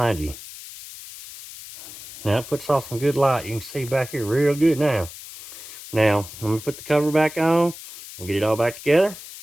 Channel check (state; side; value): noise; left; hiss, 14 dB below the sound